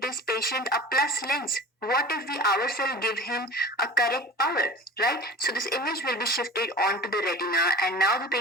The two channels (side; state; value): both; normal; correlation 0.36